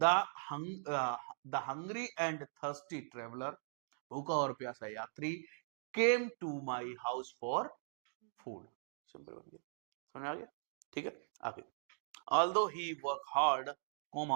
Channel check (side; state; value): left; silent; digital silence